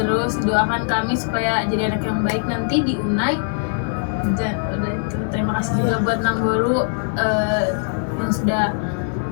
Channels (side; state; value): right; silent; 59 dB below the other